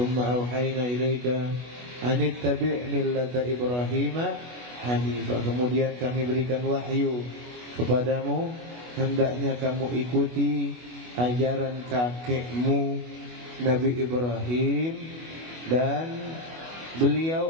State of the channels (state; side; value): late; left; 25 ms